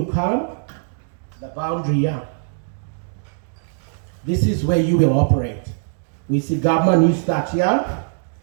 come, the boundary here. This is where you will operate. We see government, you start here.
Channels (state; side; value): silent; left; digital silence